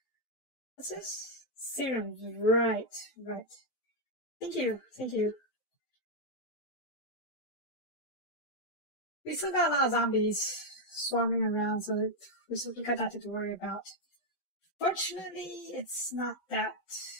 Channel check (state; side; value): late; right; 12 ms